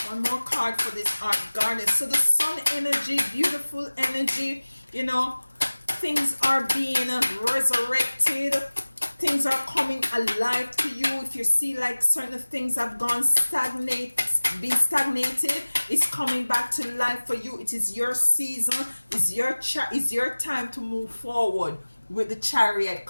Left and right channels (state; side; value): inverted; both; correlation -1.00